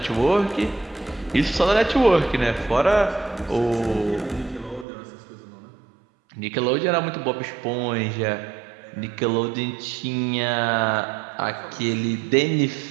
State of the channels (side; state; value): left; drops out; at 4.9 s